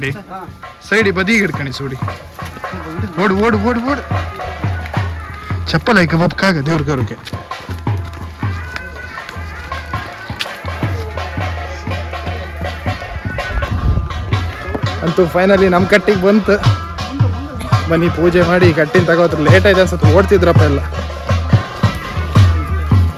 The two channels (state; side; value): identical; both; correlation 1.00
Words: ಸೈಡಿ ಬದಿಗೆ ಹಿಡ್ಕಣಿ ಸೂಡಿ. ಓಡು ಓಡು ಓಡು ಓಡು. ಚಪ್ಪಲ್ ಆಯ್ಕೆ ಬಪ್ಕಾಗ ದೇವ್ರ ಕರುಕೆ. ಅಂತೂ ಫೈನಲಿ ನಮ್ಮ ಕಟ್ಟಿಗೆ ಬಂತು. ಬನ್ನಿ ಪೂಜೆ ಮಾಡಿ ಕಟ್ಟಿನ ತಗೋತ್ರ. ಲೇಟ್ ಆಯ್ತು ಅನ್ಸುತ್ತೆ, ಓಡ್ತಿದ್ರಪ್ಪ ಎಲ್ಲ.